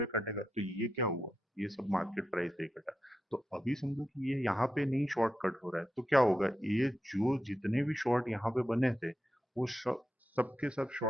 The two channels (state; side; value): normal; both; correlation 0.88